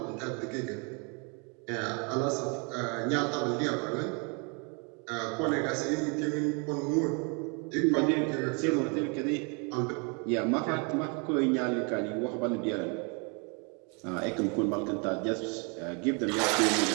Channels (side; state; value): left; quieter; 34.2 dB